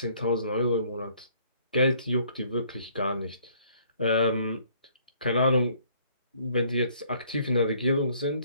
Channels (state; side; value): inverted; both; correlation -0.62